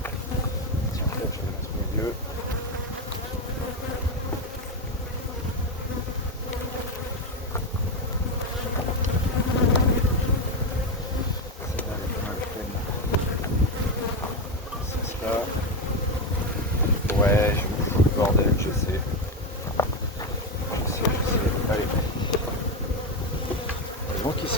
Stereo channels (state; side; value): normal; both; correlation 0.10